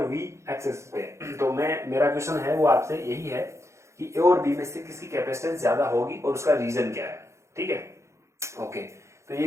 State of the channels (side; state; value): left; late; 0.14 ms